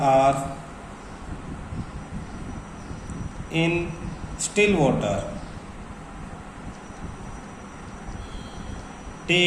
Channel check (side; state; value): both; identical; correlation 1.00